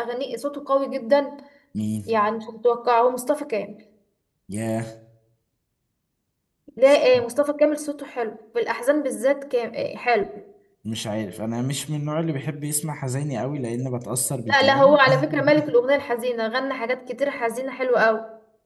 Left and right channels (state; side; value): identical; both; correlation 1.00